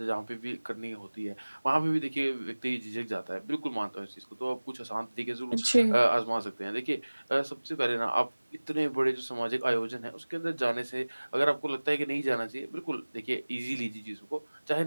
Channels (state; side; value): inverted; both; correlation -1.00